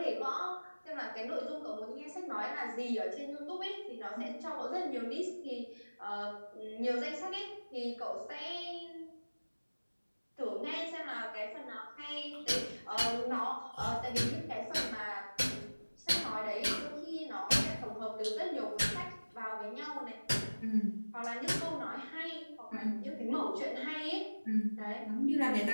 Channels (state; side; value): inverted; both; correlation -1.00